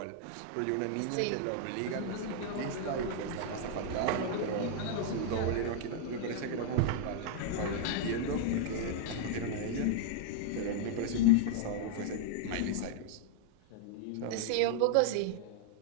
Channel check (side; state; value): both; different; correlation 0.00